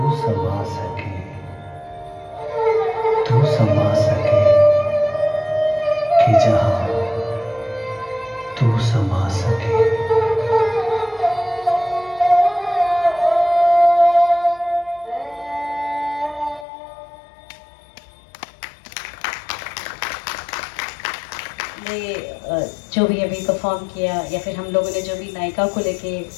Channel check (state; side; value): drops out; right; at 16.7 s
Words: समा सके, तू समा सके कि जहाँ तू समा सके। जो भी अभी परफॉर्म किया या फिर हम लोगों ने जो भी नायिका को लेके